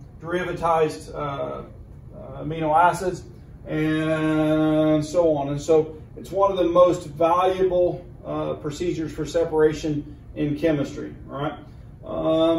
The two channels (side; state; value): both; identical; correlation 1.00